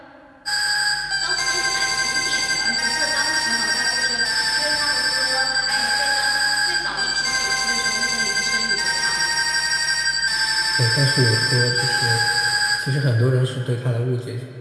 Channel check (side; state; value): both; identical; correlation 1.00